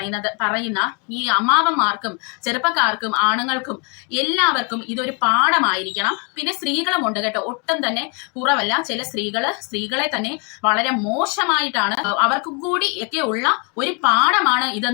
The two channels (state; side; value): quieter; right; 35.3 dB